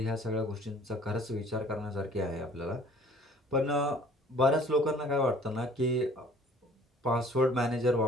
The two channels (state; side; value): normal; both; correlation 0.53